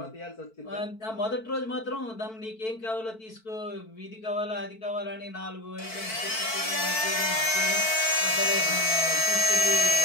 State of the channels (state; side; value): late; right; 4.5 ms